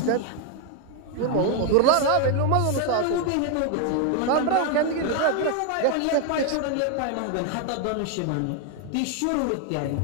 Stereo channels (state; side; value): different; both; correlation 0.01